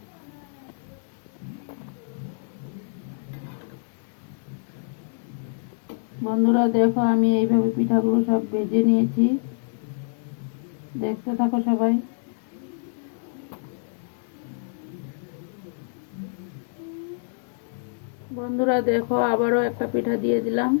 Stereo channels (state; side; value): silent; right; digital silence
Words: বন্ধুরা দেখো আমি এইভাবে পিঠাগুলো সব ভেজে নিয়েছি, দেখতে থাকো সবাই। বন্ধুরা দেখো আবারও একটা পিঠা দিয়ে দিলাম।